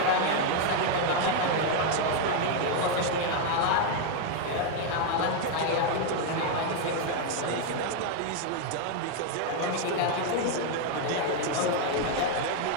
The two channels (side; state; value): both; different; correlation 0.01